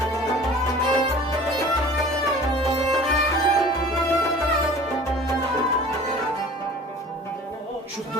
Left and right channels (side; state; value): both; normal; correlation 0.44